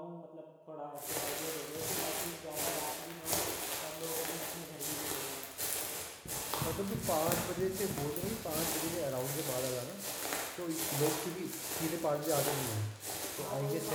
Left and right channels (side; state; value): both; identical; correlation 1.00